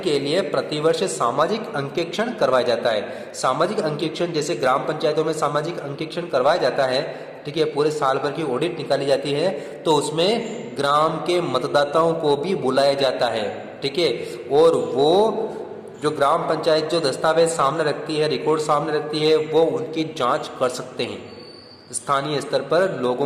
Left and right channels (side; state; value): both; identical; correlation 1.00